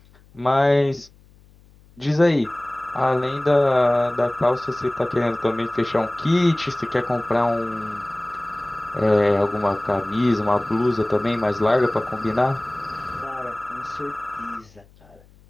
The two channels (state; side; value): noise; left; hum, 28 dB below the sound